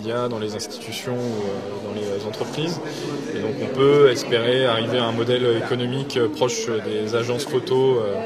dans les institutions ou dans les entreprises. Et donc on peut espérer arriver à un modèle économique proche des agences photo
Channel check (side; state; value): both; identical; correlation 1.00